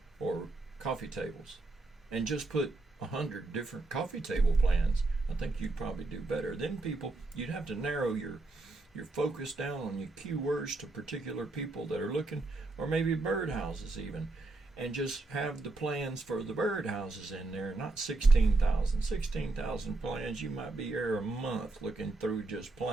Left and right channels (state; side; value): quieter; left; 3.1 dB